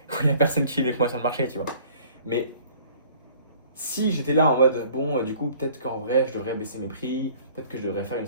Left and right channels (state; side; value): inverted; both; correlation -0.53